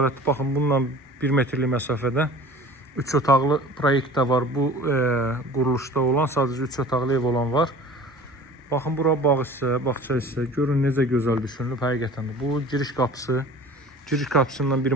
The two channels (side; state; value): both; normal; correlation 0.43